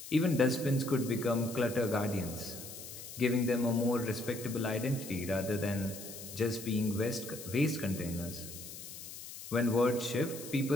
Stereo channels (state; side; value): noise; left; hiss, 12 dB below the sound